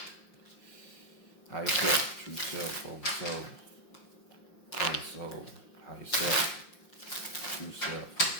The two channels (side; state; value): right; late; 5.7 ms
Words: High yourself, true self, over soul, high yourself, true self,